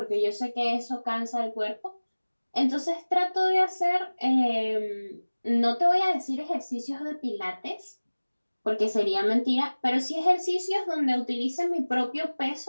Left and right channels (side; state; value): both; inverted; correlation -1.00